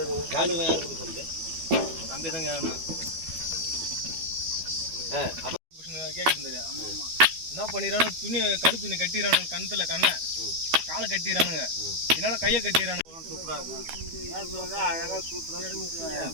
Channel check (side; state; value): left; late; 12 ms